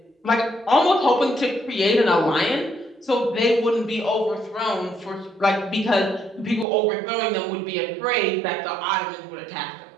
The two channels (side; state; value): left; drops out; at 6.7 s